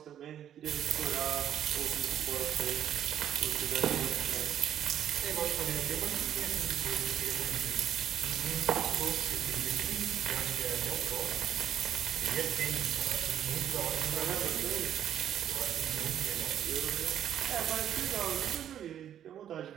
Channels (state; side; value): quieter; left; 10.3 dB